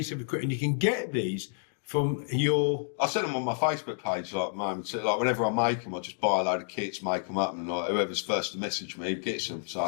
of equipment. You can get these from your... I send them on my Facebook page, like, moments. Like, whenever I make them, I just buy a load of kits, make them up, and like, whoever's first to message me gets them. So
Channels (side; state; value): right; silent; digital silence